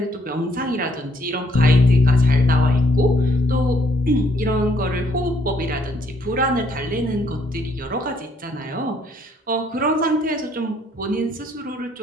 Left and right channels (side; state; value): both; normal; correlation 0.69